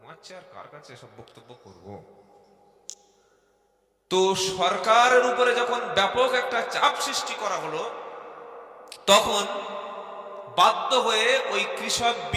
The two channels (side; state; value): both; identical; correlation 1.00